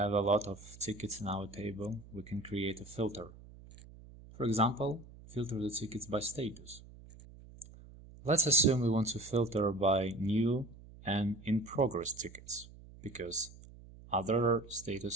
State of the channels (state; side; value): noise; right; hum, 19 dB below the sound